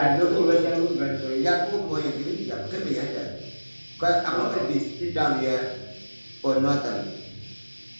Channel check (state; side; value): inverted; both; correlation -1.00